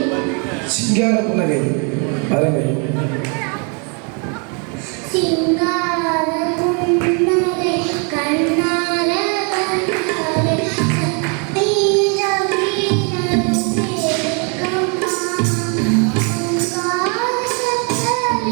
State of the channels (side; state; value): left; quieter; 36.5 dB